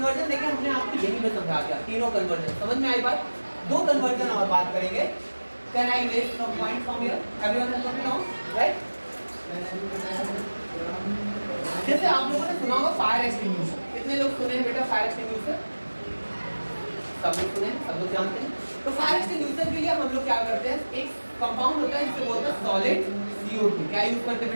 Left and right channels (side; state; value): both; inverted; correlation -1.00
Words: देखिए हमने आपको यही में समझा दिया, तीनों कन्वर्जन। समझ में आई बात? दो कन्वर्जन और बात करेंगे। Can I erase some point from here? Everyone has got it down, right? जैसे आप लोगों ने सुना होगा फायर एक्सटिंग्विशर। कितने लोग सुने हैं बेटा फायर एक्सटिंग्विशर? सब लोग सुने हैं, सब लोग जानते हैं। तो फायर एक्सटिंग्विशर के लिए हम लोग क्या करते हैं, एक कंपाउंड होता है जिसे बोलते हैं सॉलिड CO2। क्या यूज करते हैं